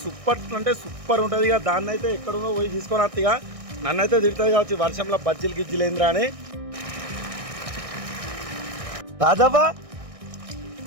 సూపర్ అంటే సూపర్ ఉంటుంది. ఇక దాన్ని అయితే ఎక్కడుందో పోయి తీసుకొని వస్తా. ఇక నన్ను అయితే తిడుతుంది కావచ్చు వర్షంలో బజ్జీలు గిజ్జీలు ఏంద్రా అని. రాజవ్వా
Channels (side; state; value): left; late; 1.6 ms